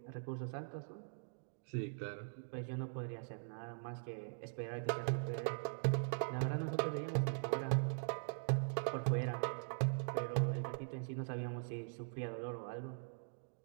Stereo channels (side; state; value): left; silent; digital silence